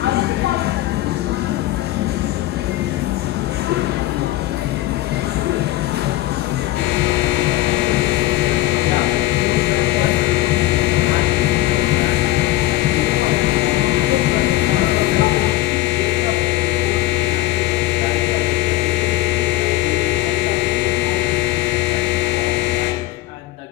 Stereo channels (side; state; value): right; quieter; 16.5 dB